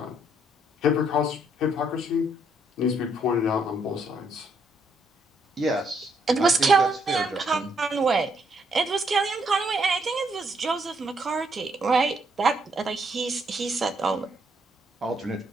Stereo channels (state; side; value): normal; both; correlation 0.72